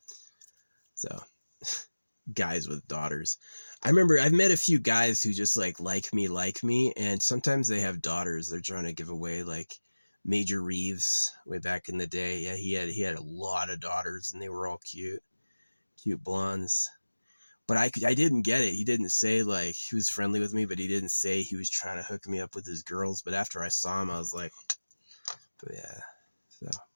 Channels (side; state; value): both; inverted; correlation -1.00